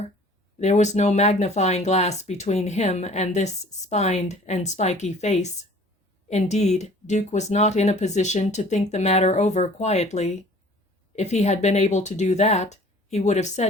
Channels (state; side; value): normal; both; correlation 0.50